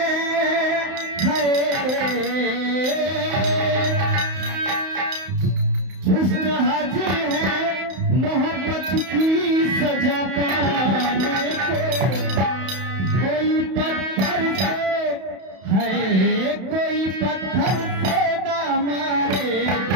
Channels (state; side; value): late; left; 31 ms